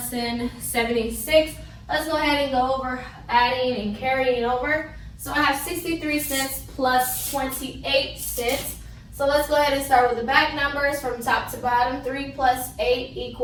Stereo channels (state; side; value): identical; both; correlation 1.00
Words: 76. Let's go ahead and go over adding and carrying over. So I have 63 cents plus 28 cents. So let's go ahead and start with the back numbers from top to bottom. 3 plus 8